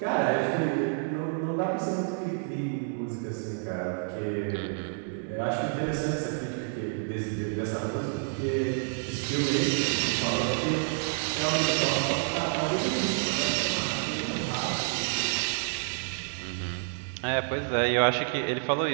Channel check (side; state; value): left; silent; 57 dB below the other